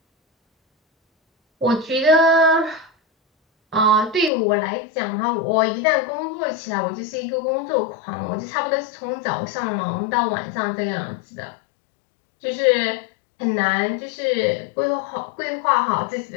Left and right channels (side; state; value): right; drops out; at 4.3 s